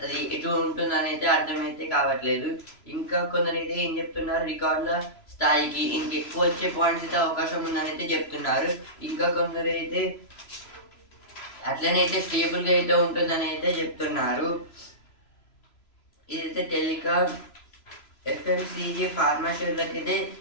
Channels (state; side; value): late; right; 3.0 ms